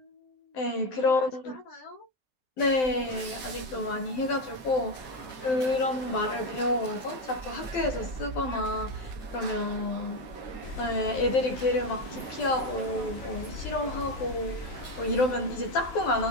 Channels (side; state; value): right; late; 12 ms